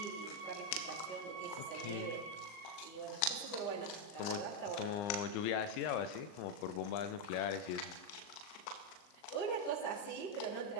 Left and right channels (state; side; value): late; right; 39 ms